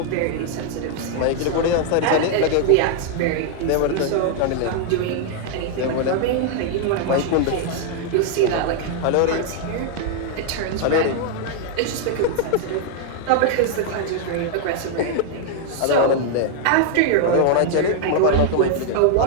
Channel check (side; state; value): both; different; correlation 0.00